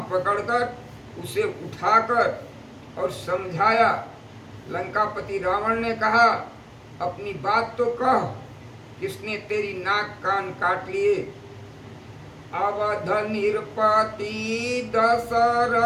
पकड़कर उसे उठाकर और समझाया। लंकापति रावण ने कहा, अपनी बात तो कह, किसने तेरी नाक कान काट लिए। अवध निरपति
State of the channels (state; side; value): identical; both; correlation 1.00